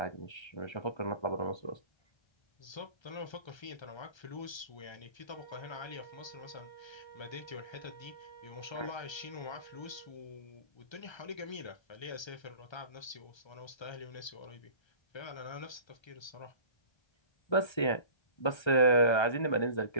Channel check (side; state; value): right; late; 1.3 ms